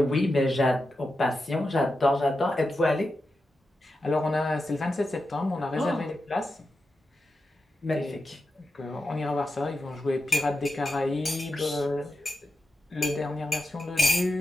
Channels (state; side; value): normal; both; correlation 0.89